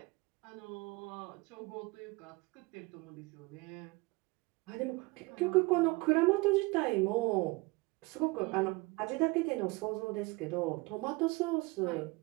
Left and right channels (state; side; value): quieter; left; 24.9 dB